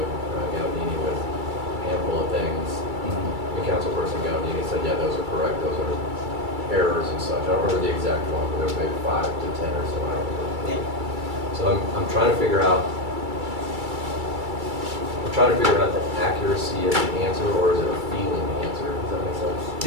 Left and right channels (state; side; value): late; left; 2.3 ms